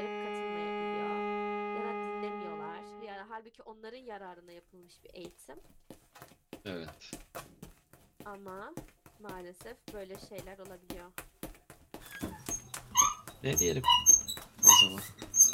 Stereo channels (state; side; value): identical; both; correlation 1.00